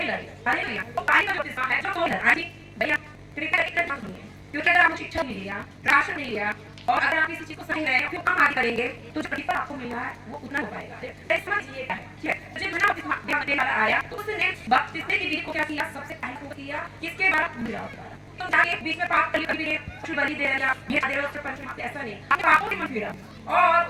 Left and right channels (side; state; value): both; identical; correlation 1.00